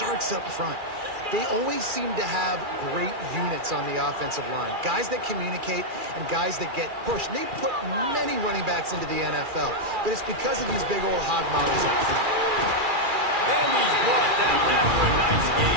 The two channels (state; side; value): late; left; 2.4 ms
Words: up front. They always seem to have great units on the offensive line. Guys that communicate and guys that get pushed. And they put many running backs into the NFL, but it's because of these big old hog mollies up front. And he's brought down after a nice